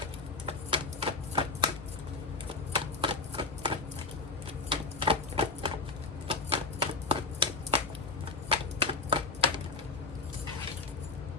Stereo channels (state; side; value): quieter; right; 3.7 dB